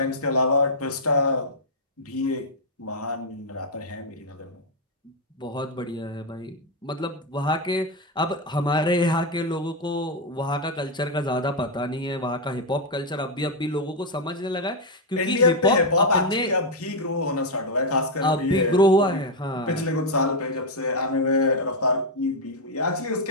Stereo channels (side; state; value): both; normal; correlation 0.01